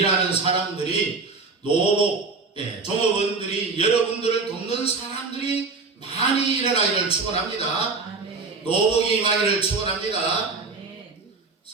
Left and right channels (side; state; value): left; quieter; 4.2 dB